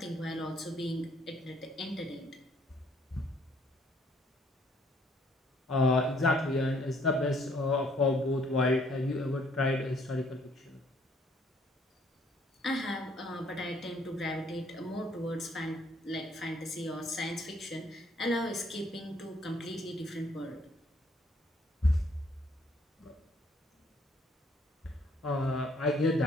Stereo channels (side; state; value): both; normal; correlation 0.64